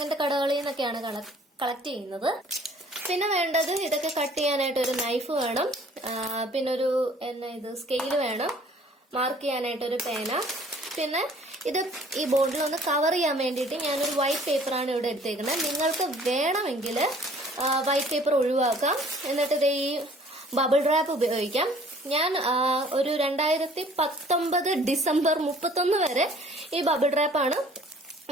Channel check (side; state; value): both; normal; correlation 0.54